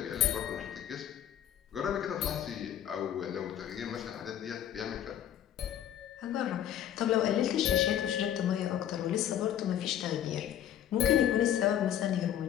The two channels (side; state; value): right; quieter; 10.6 dB